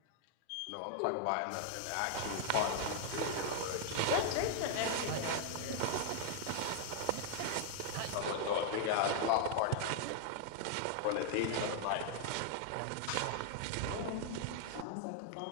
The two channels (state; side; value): different; both; correlation 0.00